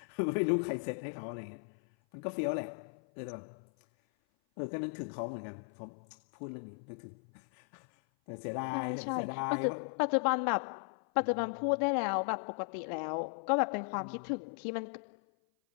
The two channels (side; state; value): right; silent; 53 dB below the other